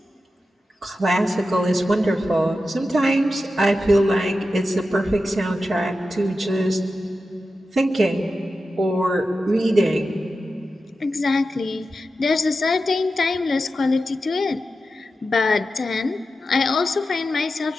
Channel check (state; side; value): normal; both; correlation 0.91